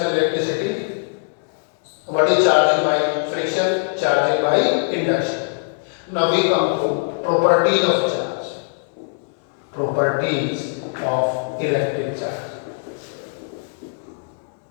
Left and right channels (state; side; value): silent; right; 65 dB below the other